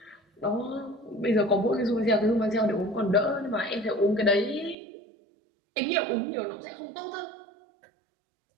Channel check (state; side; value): drops out; left; at 4.8 s